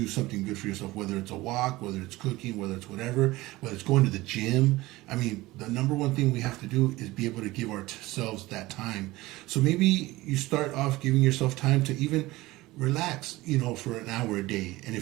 something good for yourself, whether it's a walk, whether it's cooking, whether it's whatever, whether it's going to the gym. I mean, the number one thing we have to do is be able to give ourselves that time. So maybe you start off giving yourself time to even relax, for an hour a day. And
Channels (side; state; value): left; quieter; 19.2 dB